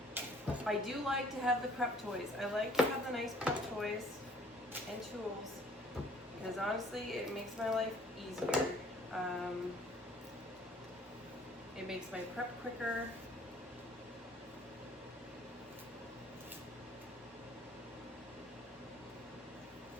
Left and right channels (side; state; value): both; normal; correlation 0.57